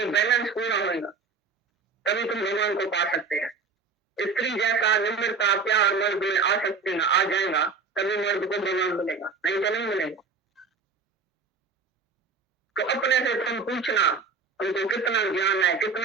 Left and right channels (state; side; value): quieter; left; 4.8 dB